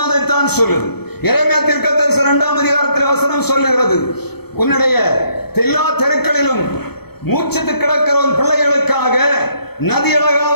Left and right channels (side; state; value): right; late; 0.97 ms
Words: அதைத்தான் சொல்லுது. எரேமியா தீர்க்க தரிசனம் 2ஆம் அதிகாரத்தில் வசனம் சொல்லுகிறது, உன்னுடைய எல்லா தெருக்களிலும் மூச்சித்து கிடக்கிறவன் பிள்ளைகளுக்காக